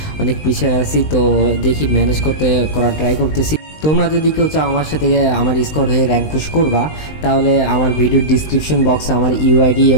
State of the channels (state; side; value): late; right; 20 ms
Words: অনেক পিছিয়ে আছি। তো দেখি ম্যানেজ করার ট্রাই করতেছি। তোমরা যদি কেউ চাও আমার সাথে আমার স্কোর হয়ে র্যাঙ্ক পুশ করবা, তাহলে আমার ভিডিওর ডিসক্রিপশন বক্সে আমার ইউআইডি